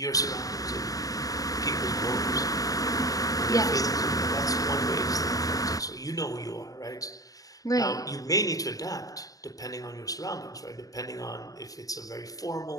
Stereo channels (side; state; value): right; late; 0.17 ms